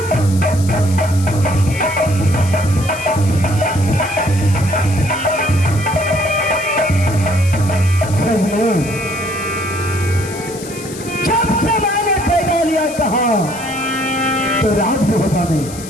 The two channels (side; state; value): left; noise; hiss, 14 dB below the sound